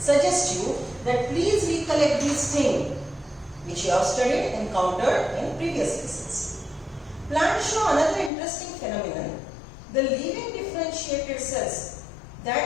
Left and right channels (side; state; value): right; drops out; at 8.3 s